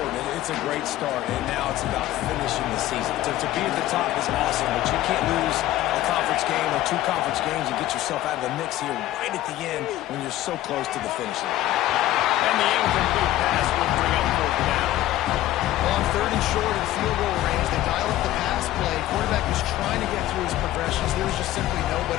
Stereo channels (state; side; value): quieter; right; 14.5 dB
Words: It's a great start, and now it's about finishing the season. To be at the top is awesome, but you can't lose a conference game or 2 conference games and get yourself out of the mix here right at the end when you're so close to the finish line. And the incomplete pass will bring up 4th down. On 3rd and short in field goal range, they dial up the pass play. Quarterback was trying to get through his progressions. There was just simply